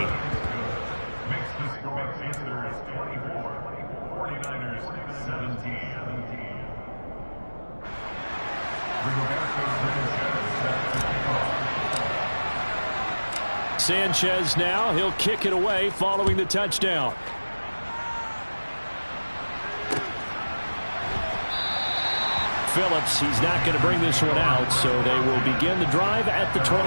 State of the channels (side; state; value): both; inverted; correlation -1.00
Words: Sanchez now, he'll kick it away following the touchdown. Phillips, he's not going to bring this one out, so they will begin the drive at the